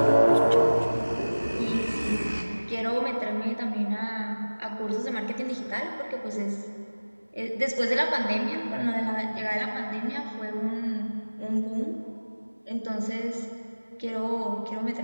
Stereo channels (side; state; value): both; inverted; correlation -1.00